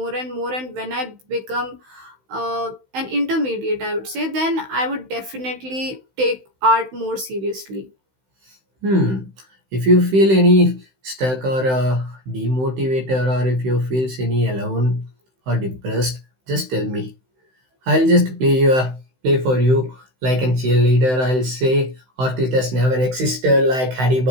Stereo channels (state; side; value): late; left; 16 ms